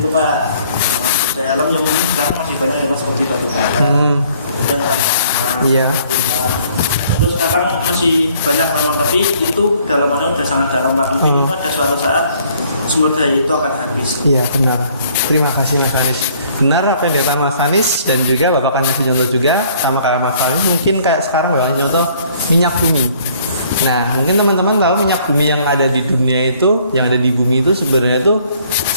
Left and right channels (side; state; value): both; inverted; correlation -0.61